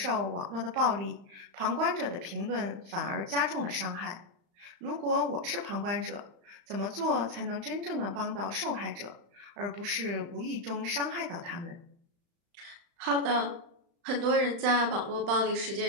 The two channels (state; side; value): late; left; 35 ms